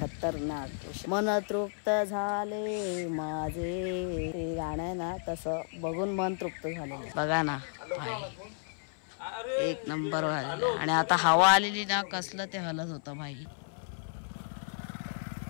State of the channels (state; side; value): silent; right; 56 dB below the other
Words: मन तृप्त झाले माझे, ते गाणं आहे ना तसं बघून मन तृप्त झालेलं. बघा ना भाई एक नंबर झालेला आहे. आणि आता हवा आलेली ना कसलं ते हलत होतं भाई.